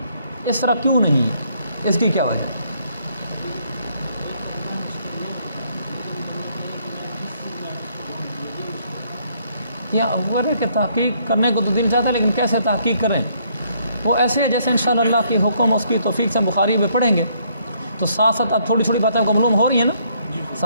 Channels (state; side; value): inverted; both; correlation -0.68